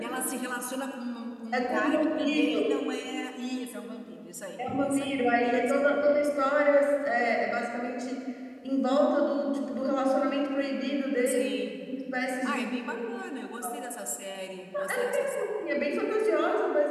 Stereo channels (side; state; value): both; identical; correlation 1.00